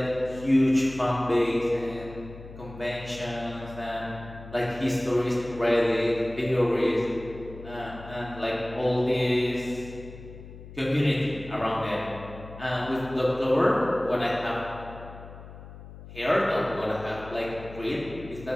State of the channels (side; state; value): left; noise; hum, 15 dB below the sound